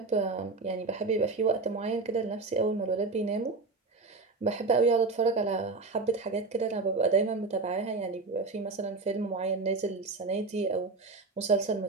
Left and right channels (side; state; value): left; quieter; 3.8 dB